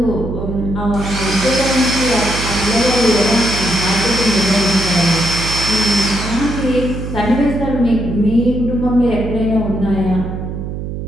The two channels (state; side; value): noise; right; hum, 6 dB below the sound